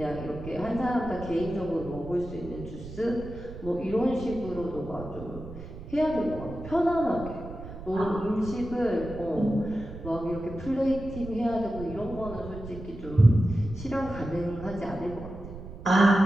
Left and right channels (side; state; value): right; noise; rumble, 12 dB below the sound